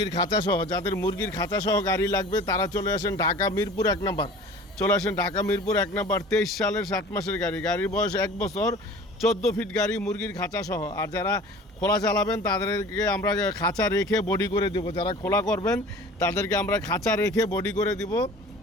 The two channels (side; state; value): both; normal; correlation 0.43